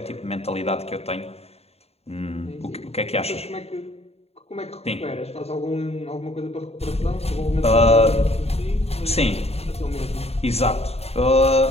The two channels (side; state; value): right; late; 0.30 ms